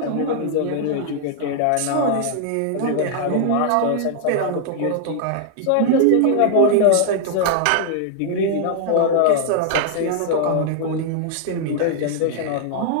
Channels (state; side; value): different; both; correlation 0.00